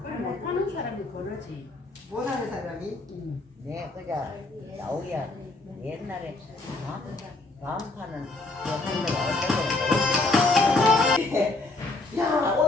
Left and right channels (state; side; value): quieter; right; 3.2 dB